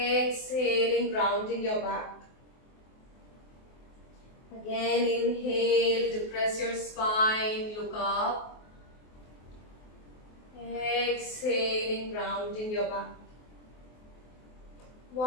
rounding your back. Again, inhale, depress your spine, look up. Exhaling, rounding your back.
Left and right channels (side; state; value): right; late; 23 ms